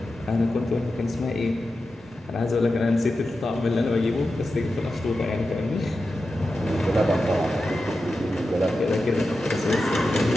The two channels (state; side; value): normal; both; correlation 0.91